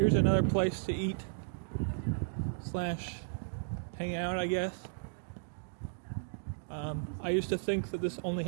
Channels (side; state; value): left; silent; digital silence